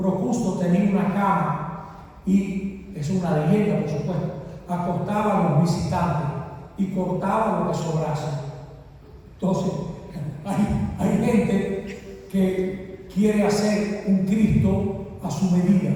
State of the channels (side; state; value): both; identical; correlation 1.00